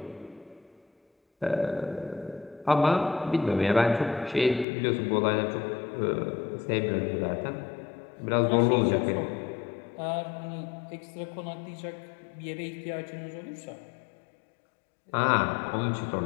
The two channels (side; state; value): right; drops out; at 4.7 s